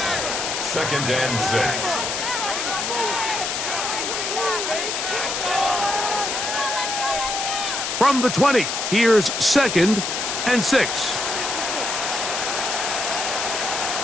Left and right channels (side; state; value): left; noise; hiss, 2 dB below the sound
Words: 2nd and 6. From the 20, here's 2nd and 6.